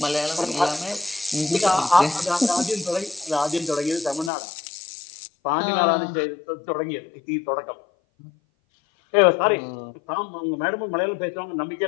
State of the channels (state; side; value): drops out; right; at 4.3 s